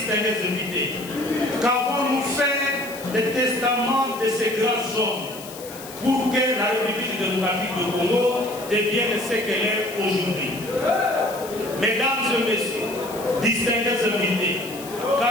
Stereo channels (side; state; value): left; noise; hiss, 15 dB below the sound